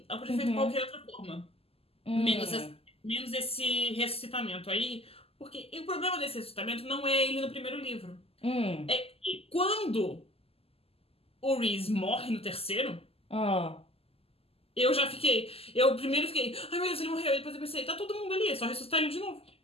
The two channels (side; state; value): right; late; 0.28 ms